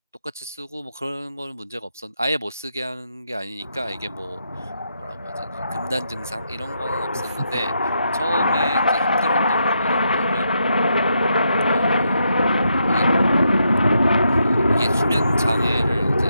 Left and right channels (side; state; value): both; inverted; correlation -0.80